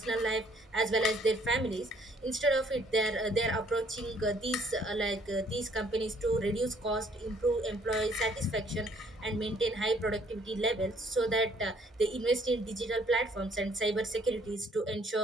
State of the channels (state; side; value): normal; both; correlation 0.63